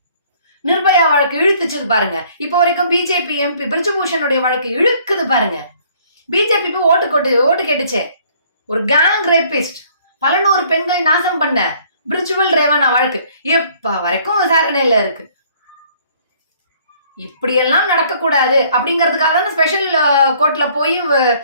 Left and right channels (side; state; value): both; inverted; correlation -0.59